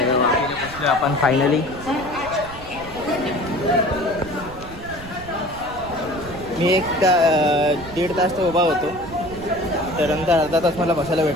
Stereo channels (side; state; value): right; noise; rumble, 15 dB below the sound